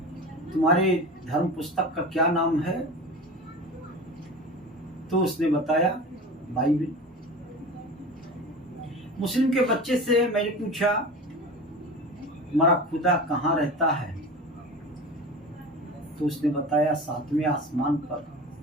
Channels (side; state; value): both; normal; correlation 0.32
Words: तुम्हारे धर्म पुस्तक का क्या नाम है? तो उसने बताया बाइबल। मुस्लिम के बच्चे से मैंने पूछा तुम्हारा खुदा कहाँ रहता है? तो उसने बताया 7वें आसमान पर।